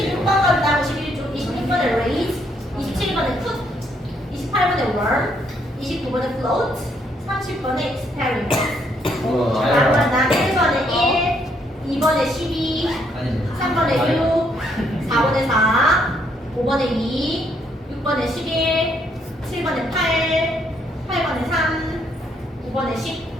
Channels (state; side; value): normal; both; correlation 0.71